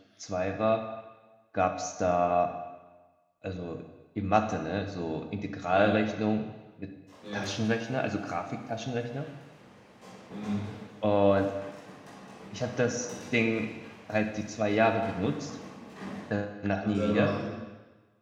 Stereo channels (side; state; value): both; identical; correlation 1.00